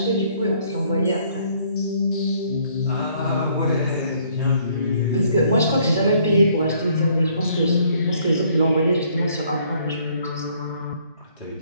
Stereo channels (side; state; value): both; inverted; correlation -0.64